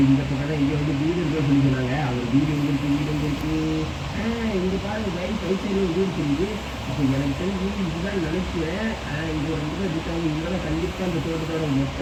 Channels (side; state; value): both; identical; correlation 1.00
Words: இந்த பக்கம் தான் இங்கே வந்து வீடு இருக்குன்னு சொல்லி சொன்னாங்க. அவங்க வீடு எங்கே இருக்குது? இங்கே பாருங்க லைன் சைடு வீடு தெரியுது. அப்போ எனக்கு தெரிஞ்சு இதுதான் நினைக்கிறேன். இங்கே வந்து இருக்காங்க. இங்கே கண்டிப்பாக இந்த தோட்டத்தோட மொத்த